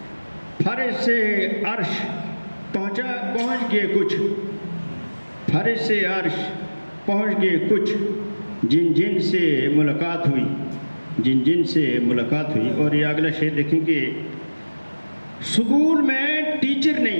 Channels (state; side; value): inverted; both; correlation -1.00